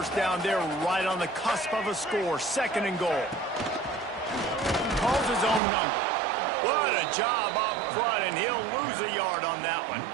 down, they're right on the cusp of a score. 2nd and goal. Calls his own number. What a job up front, and he'll lose a yard on that one.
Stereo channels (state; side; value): drops out; left; at 5.6 s